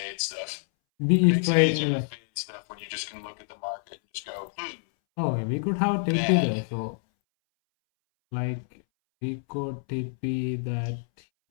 stuff. It makes it easier to fade stuff when you just can look at the market and just go, Oh, we could have TP there, so like we could TP that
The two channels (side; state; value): right; silent; 60 dB below the other